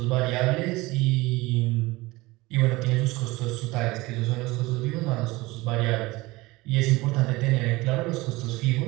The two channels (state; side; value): quieter; left; 21.2 dB